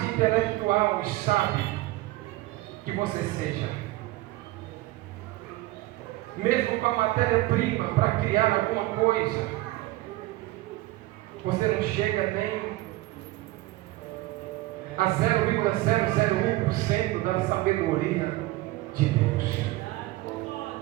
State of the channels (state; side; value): quieter; left; 18.4 dB